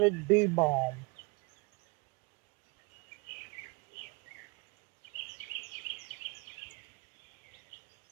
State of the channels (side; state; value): left; quieter; 29.4 dB